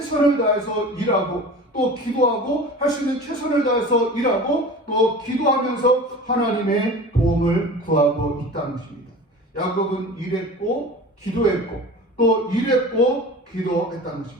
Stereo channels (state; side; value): normal; both; correlation 0.37